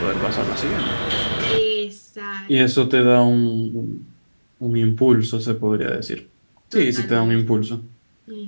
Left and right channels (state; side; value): inverted; both; correlation -1.00